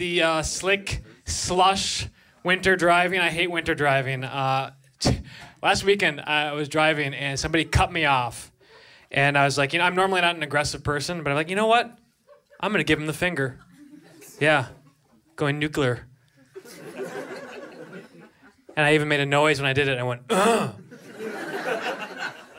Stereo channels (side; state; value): both; identical; correlation 1.00